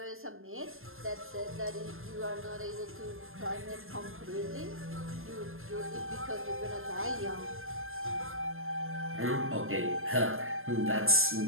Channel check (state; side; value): late; left; 0.60 ms